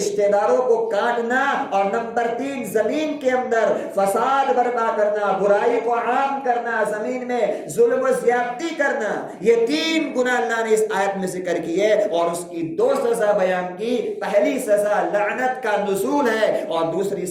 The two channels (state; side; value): identical; both; correlation 1.00